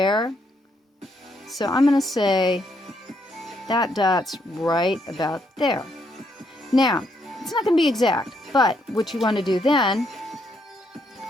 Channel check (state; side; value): normal; both; correlation 0.75